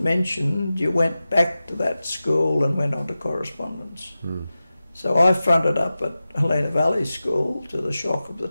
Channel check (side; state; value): both; inverted; correlation -0.95